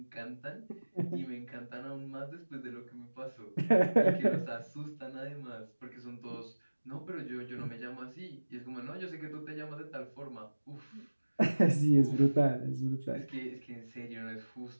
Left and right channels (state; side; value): inverted; both; correlation -1.00